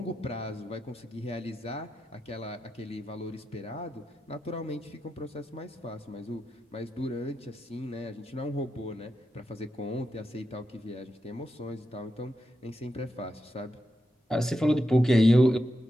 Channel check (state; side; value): normal; both; correlation 0.87